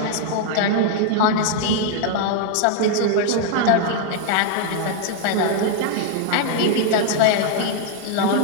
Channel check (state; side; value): different; both; correlation 0.00